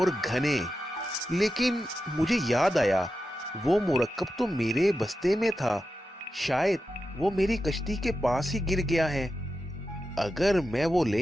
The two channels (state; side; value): normal; both; correlation 0.90